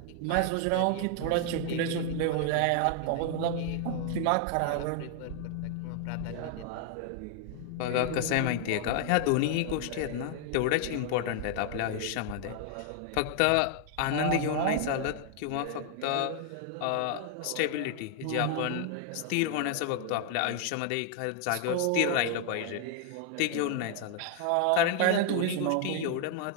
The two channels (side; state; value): both; different; correlation 0.00